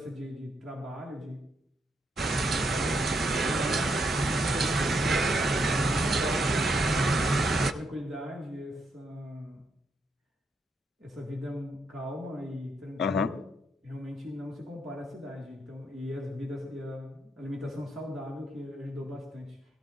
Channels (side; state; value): both; normal; correlation 0.78